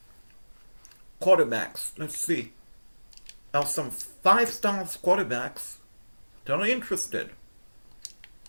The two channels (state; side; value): inverted; both; correlation -1.00